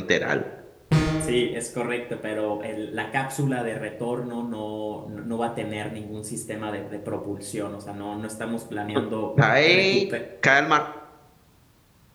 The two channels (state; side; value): identical; both; correlation 1.00